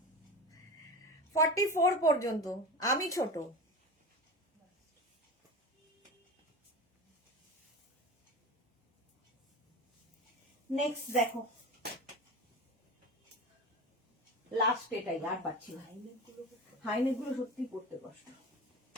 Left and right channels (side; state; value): both; normal; correlation 0.27